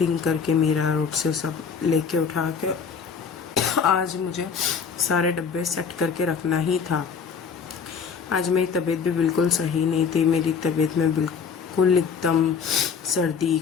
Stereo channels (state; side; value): quieter; right; 6.2 dB